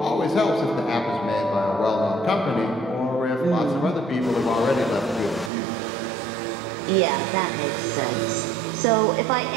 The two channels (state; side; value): drops out; left; at 5.5 s